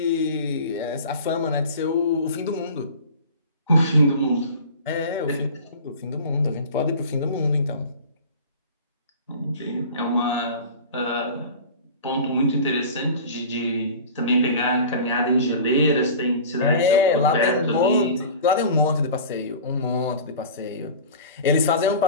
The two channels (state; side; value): inverted; both; correlation -0.38